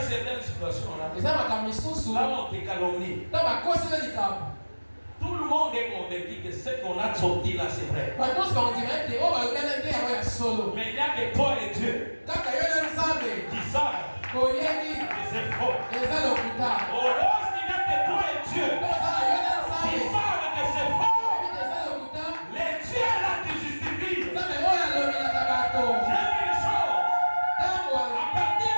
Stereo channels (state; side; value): inverted; both; correlation -1.00